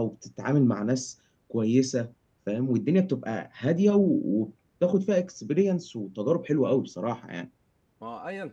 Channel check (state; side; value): identical; both; correlation 1.00